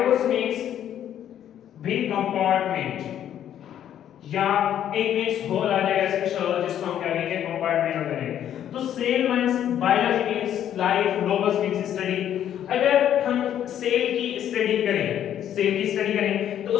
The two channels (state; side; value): quieter; right; 10.4 dB